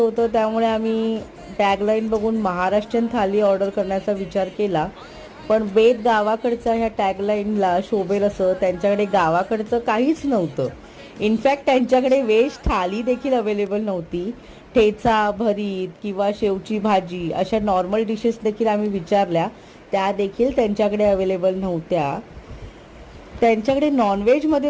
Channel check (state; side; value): identical; both; correlation 1.00